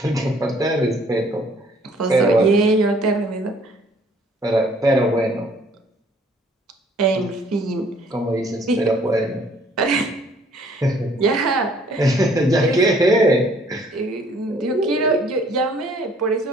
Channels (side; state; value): both; normal; correlation 0.60